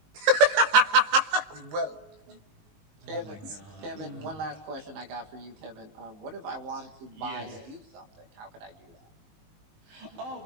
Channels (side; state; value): left; late; 19 ms